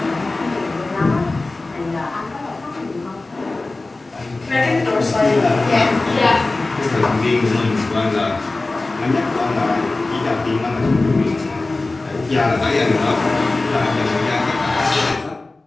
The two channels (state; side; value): quieter; right; 3.2 dB